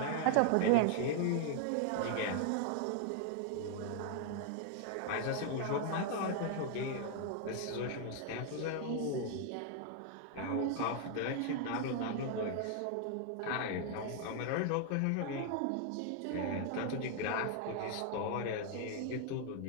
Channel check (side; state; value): both; different; correlation 0.00